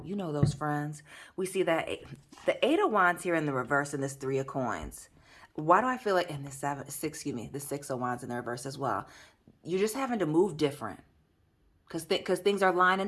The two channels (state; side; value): identical; both; correlation 1.00